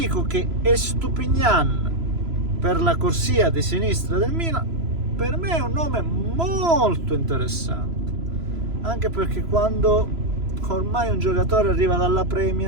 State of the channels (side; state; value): left; late; 3.0 ms